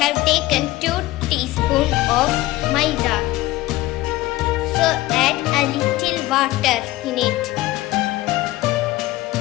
have taken 2 teaspoons of maida. So add a little water in it.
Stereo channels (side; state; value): right; quieter; 17.5 dB